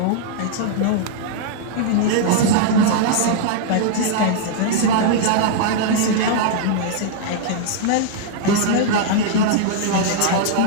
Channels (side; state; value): both; different; correlation -0.01